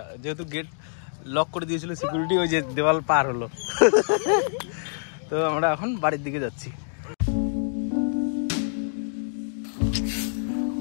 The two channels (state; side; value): silent; right; 61 dB below the other